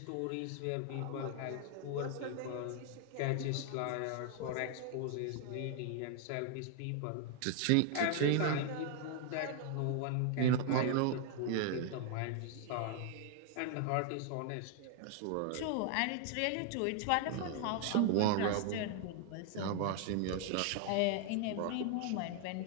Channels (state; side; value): different; both; correlation 0.00